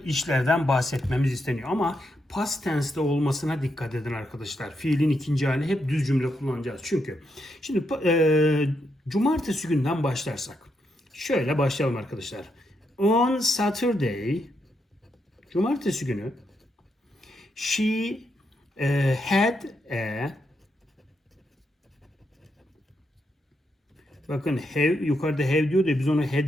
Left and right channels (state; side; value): normal; both; correlation 0.81